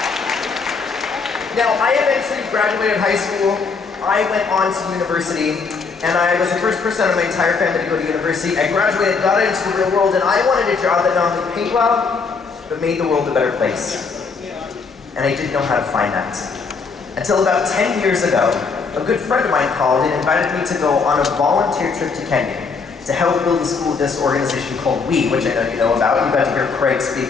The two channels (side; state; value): right; quieter; 4.9 dB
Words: Now, I eventually graduated high school. I went on to university, and I was the first person out of my entire family to go to university. I graduated, got into the real world, and I wanted a job that not only paid well, but made the world a better place. And I didn't know how to find that. Until about 10 years ago, a good friend of mine called and invited me to go on a volunteer trip to Kenya to help build a school with this organization called WE, which I know you know about. You got to hear Craig